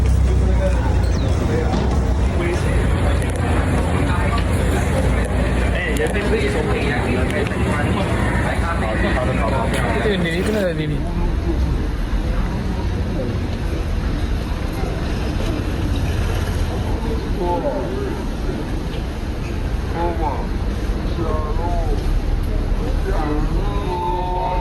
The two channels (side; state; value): both; identical; correlation 1.00